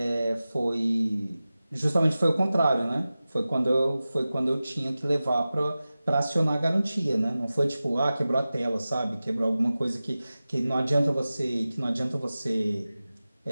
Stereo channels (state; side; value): inverted; both; correlation -0.96